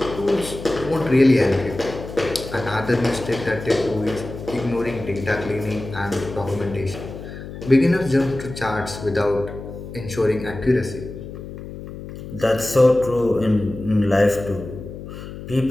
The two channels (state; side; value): noise; left; hum, 11 dB below the sound